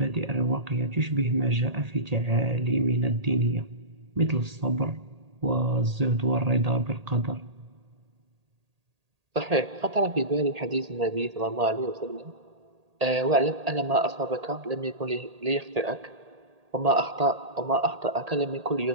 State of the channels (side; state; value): left; late; 1.8 ms